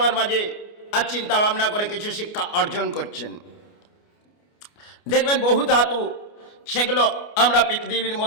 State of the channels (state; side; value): late; right; 29 ms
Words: মাঝে আর চিন্তা ভাবনা করে কিছু শিক্ষা অর্জন করছেন। দেখবেন বহু ধাতু, সেগুলো আমরা পৃথিবীর